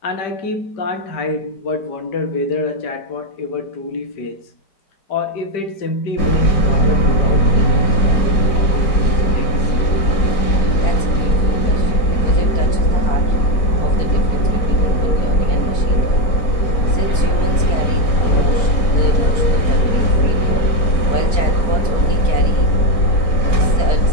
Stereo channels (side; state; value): right; late; 4.5 ms